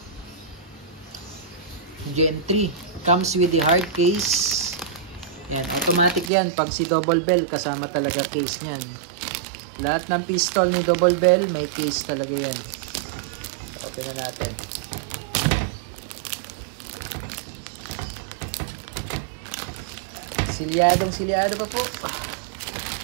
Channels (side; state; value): left; drops out; at 6.3 s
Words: Gen 3. Comes with the hard case. Yan, automatic yan. Pag si Double Bell, kasama talaga case niyan. Lahat ng pistol ni Double Bell, may case talaga yan. Open na natin. Silyado pa po.